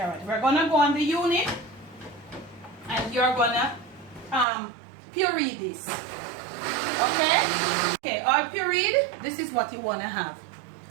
We're going to go on the unit. And you're going to puree this. Okay? Okay, all pureed. This is what you want to have.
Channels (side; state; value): left; drops out; at 4.5 s